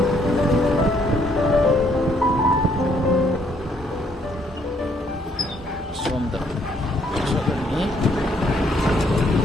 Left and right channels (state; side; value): normal; both; correlation 0.68